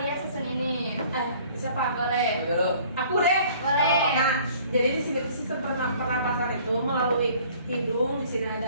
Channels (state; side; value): inverted; both; correlation -0.54